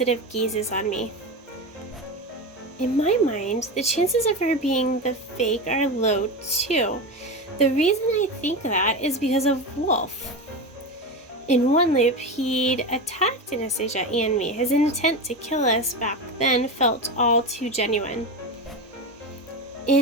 gazes on me. In my mind, the chances of her being the fake are low too. The reason I think that is because of Wolf. In one loop, he'd attacked Anastasia and me. His intent to kill us back then felt all too genuine.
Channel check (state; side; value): normal; both; correlation 0.21